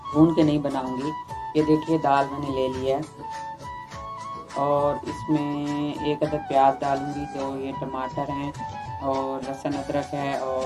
भून के नहीं बनाऊंगी। ये देखिए दाल मैंने ले लिया है और इसमें एक अदर प्याज डालूंगी। तो ये टमाटर हैं और लहसुन अदरक है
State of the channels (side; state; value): both; identical; correlation 1.00